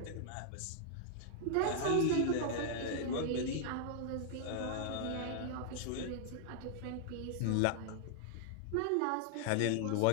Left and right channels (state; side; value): different; both; correlation -0.01